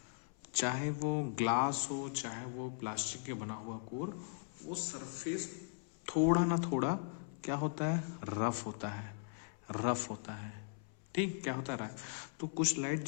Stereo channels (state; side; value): silent; right; 52 dB below the other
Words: चाहे वो ग्लास हो चाहे वो प्लास्टिक के बना हुआ कोर, वो सरफेस थोड़ा ना थोड़ा क्या होता है, रफ होता है। ठीक, क्या होता है, तो कुछ लाइट